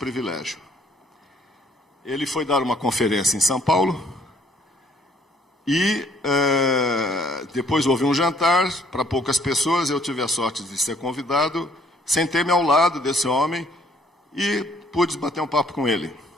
Ele foi dar uma conferência em São Paulo e depois houve um jantar para poucas pessoas. Eu tive a sorte de ser convidado, sentei-me ao lado desse homem e pude bater um papo com ele.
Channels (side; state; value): both; normal; correlation 0.63